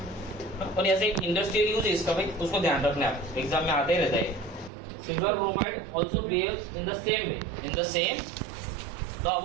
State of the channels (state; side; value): drops out; left; at 4.7 s